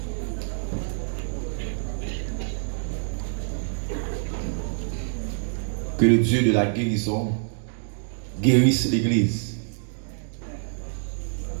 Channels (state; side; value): silent; left; digital silence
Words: Que le Dieu de la guérison guérisse l'Église.